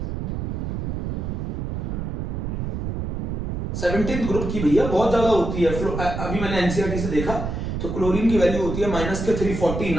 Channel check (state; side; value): noise; right; rumble, 3 dB below the sound